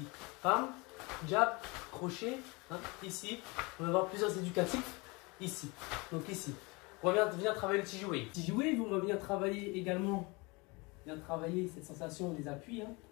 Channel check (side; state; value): right; quieter; 26.6 dB